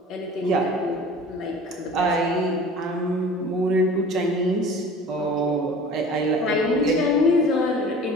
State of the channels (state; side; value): normal; both; correlation 0.42